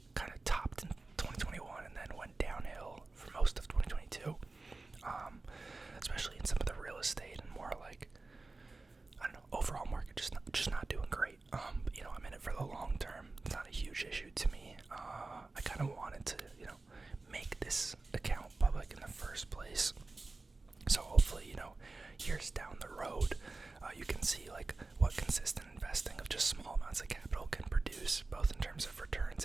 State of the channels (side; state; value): left; quieter; 3.5 dB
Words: kind of topped in 2021 and then went downhill for most of 2022, especially in some of the real estate and more overall market just not doing great. But, I'm in it for the long term. It's not a huge issue to me. I kind of wanted to, make this account public in the first place. So hopefully, years down the road, you can see what consistent investing of just small amounts of capital can produce, both in terms of returns